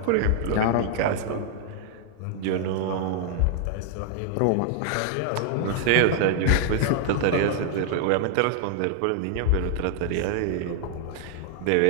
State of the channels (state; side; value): different; both; correlation 0.00